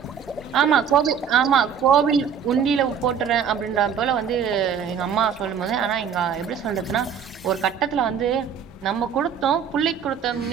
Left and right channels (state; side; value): quieter; left; 7.5 dB